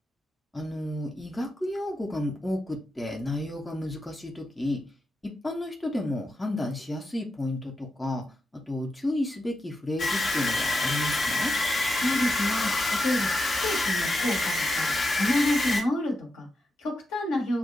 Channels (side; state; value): both; normal; correlation 0.87